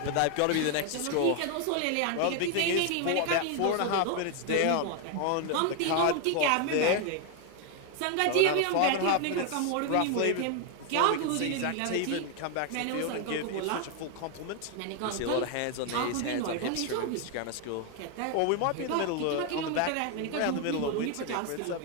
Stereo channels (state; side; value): different; both; correlation 0.01